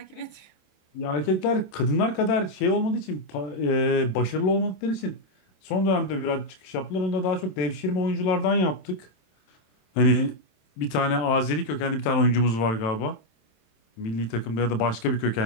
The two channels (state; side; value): late; right; 27 ms